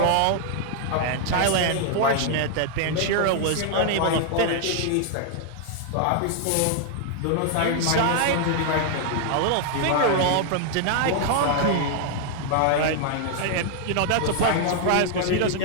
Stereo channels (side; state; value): both; different; correlation 0.00